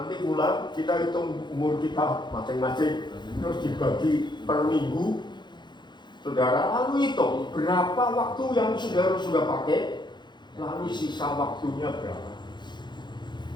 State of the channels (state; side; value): late; right; 0.22 ms